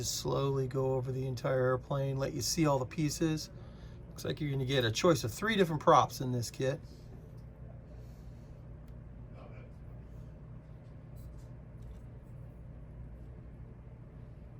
slowly go over the entire airplane, let you see all the pieces. Looks like you're going to get a choice of 3 different props in this kit.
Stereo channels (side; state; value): both; identical; correlation 1.00